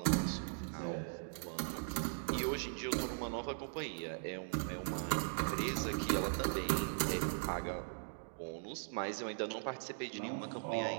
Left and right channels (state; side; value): silent; left; digital silence